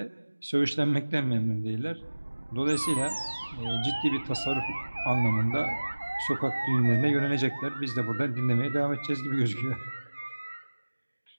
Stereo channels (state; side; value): inverted; both; correlation -1.00